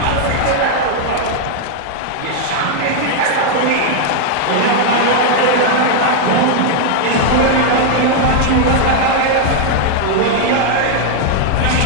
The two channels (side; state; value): both; different; correlation 0.00